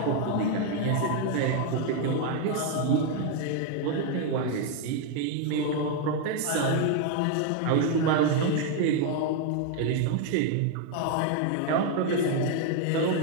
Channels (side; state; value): both; different; correlation 0.00